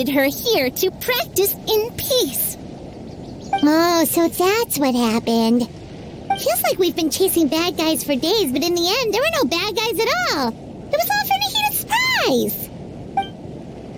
her here to practice in peace. Oh, so that's what happened. Feels like we've been chasing bad guys for days, but in the end, there were no bad guys at all. It was all for the heated surprise.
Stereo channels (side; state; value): both; identical; correlation 1.00